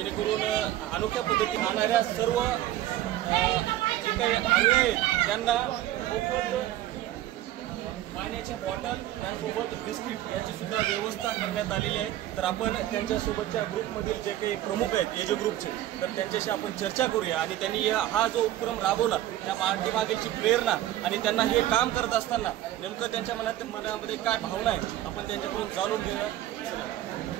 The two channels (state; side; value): quieter; left; 13.7 dB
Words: अनोख्या पद्धतीने राहणाऱ्या सर्व जे काही अनुयायी आहेत त्यांना मोफत पाण्याच्या बॉटल त्यासोबत बिस्किट याची सुद्धा व्यवस्था करण्यात आलेली आहे। तर आपण त्यांच्यासोबतच्या ग्रुपमधील जे काही प्रमुख आहेत एजी ग्रुपचे, तर त्यांच्याशी आपण चर्चा करूया आणि त्यांनी हा जो उपक्रम राबवला त्या पाठीमागीलची प्रेरणा आणि त्यांना हे काम करत असताना नेमकं त्यांच्या मनामध्ये काय भावना आहे आपण त्यांच्याकडून जाणून घेऊया।